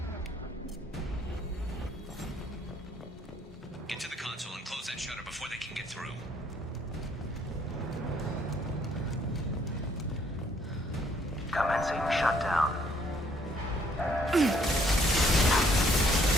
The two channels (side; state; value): both; normal; correlation 0.65